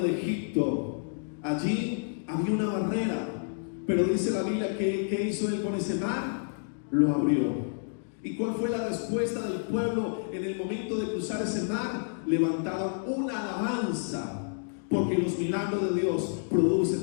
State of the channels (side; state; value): right; silent; digital silence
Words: Egipto, allí había una barrera? Pero dice la Biblia que ¿qué hizo él con ese mar? Lo abrió. ¿Y cuál fue la respuesta del pueblo en el momento de cruzar ese mar? Levantaron una alabanza, porque los milagros de Dios